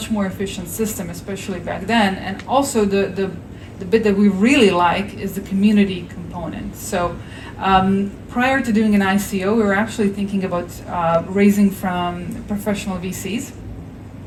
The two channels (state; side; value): identical; both; correlation 1.00